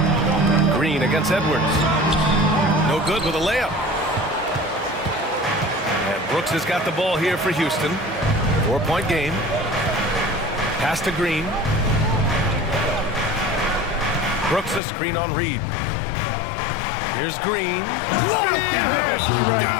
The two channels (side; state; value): right; drops out; at 14.8 s